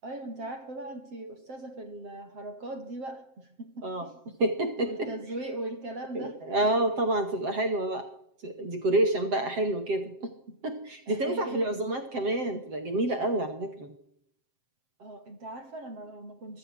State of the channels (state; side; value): late; left; 7.6 ms